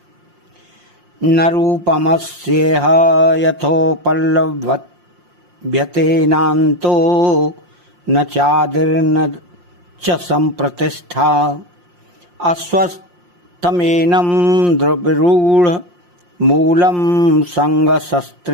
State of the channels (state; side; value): late; left; 5.7 ms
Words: न रूपमस्येह यथोपलभ्यते नान्तो न चादिर्न च संप्रतिष्ठा अस्वस्थमेनं द्रविरूढ़ मूलम